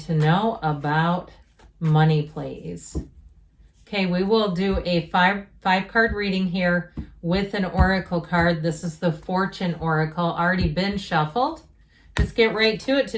know about money, please? Okay, we will do a five card reading here with an oracle card. This is the Fortune Oracle, already been shuffled. Let's get right to it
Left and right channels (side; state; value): both; identical; correlation 1.00